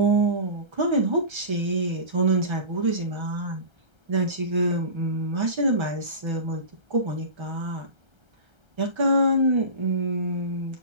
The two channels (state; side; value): late; left; 1.3 ms